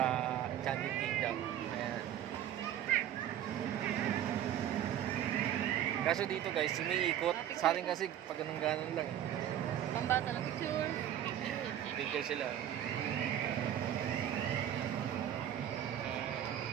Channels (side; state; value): left; quieter; 10.9 dB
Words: Enchanted Kingdom. Ayan. Kaso dito guys, sumiikot. Sa atin kasi pag ganun lang eh. Pambata na picture. Picture sila.